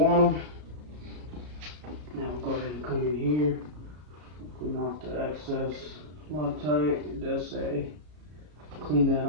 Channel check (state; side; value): late; left; 33 ms